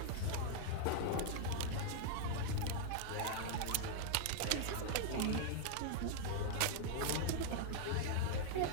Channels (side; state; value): both; different; correlation -0.01